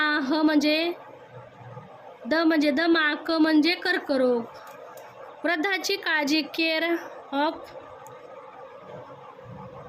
म्हणजे दमा, म्हणजे कर्करोग. वृद्धाची काळजी, केअर ऑफ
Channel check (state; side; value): identical; both; correlation 1.00